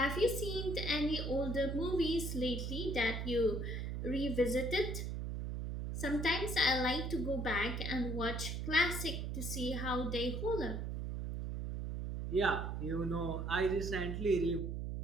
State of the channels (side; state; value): right; noise; hum, 3 dB below the sound